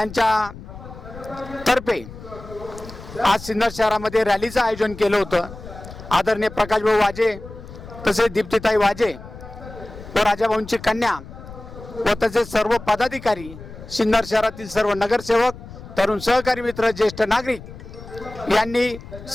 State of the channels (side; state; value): left; noise; rumble, 15 dB below the sound